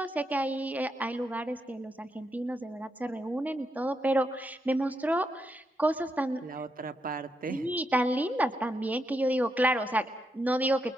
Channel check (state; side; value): normal; both; correlation 0.82